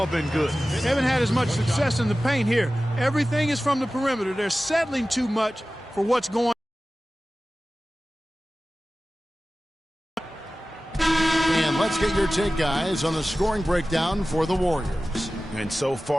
been good. They haven't had as much success in the paint here. Everything is from the perimeter. They're settling too much for what's going on. And let's get your take, guys, on the scoring breakdown for the Warriors. And so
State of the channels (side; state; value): both; normal; correlation 0.96